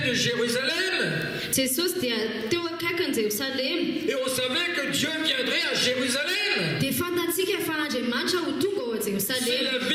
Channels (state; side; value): identical; both; correlation 1.00